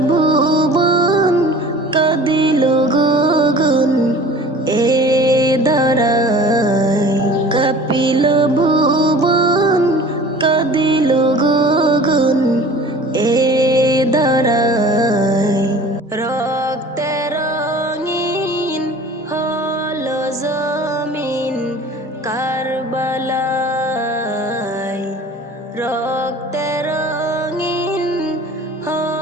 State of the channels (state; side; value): normal; both; correlation 0.44